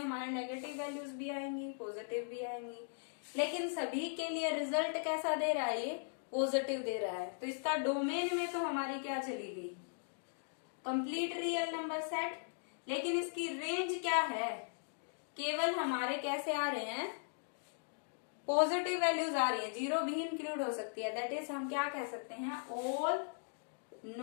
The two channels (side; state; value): right; silent; digital silence